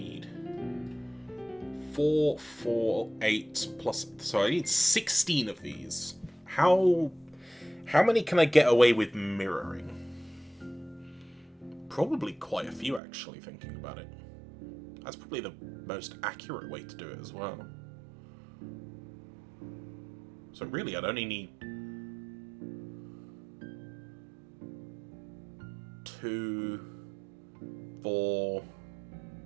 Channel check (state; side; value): drops out; left; at 13.0 s